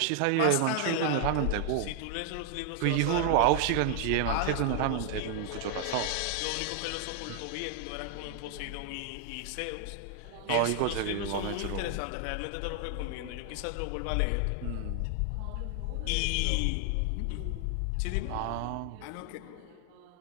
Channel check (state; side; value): different; both; correlation 0.00